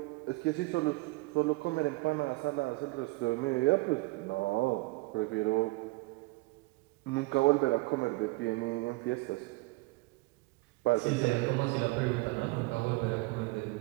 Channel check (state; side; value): quieter; left; 23.2 dB